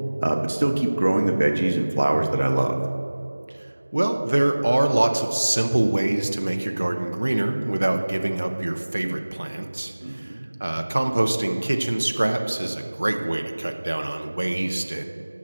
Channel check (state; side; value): inverted; both; correlation -1.00